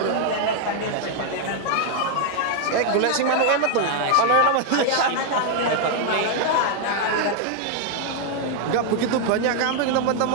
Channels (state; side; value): different; both; correlation 0.00